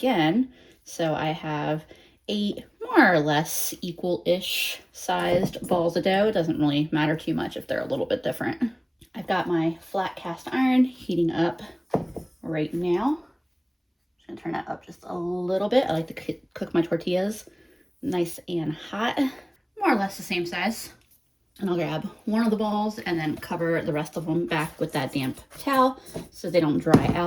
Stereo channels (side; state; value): both; identical; correlation 1.00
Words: So I have 8 more or less equal-ish sized balls of dough. It doesn't really matter too much if they're a little bit different. I've got my flat cast iron heating up right now. I'm gonna turn that up just a little bit. I like to cook my tortillas nice and hot, more or less the same size. And I'll grab one of the balls and then cover the rest of them back with that damp towel so they don't dry